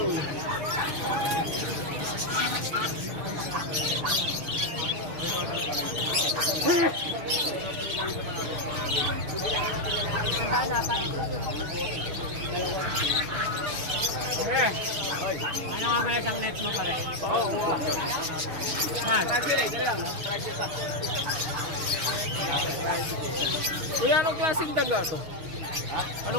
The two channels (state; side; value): late; left; 6.5 ms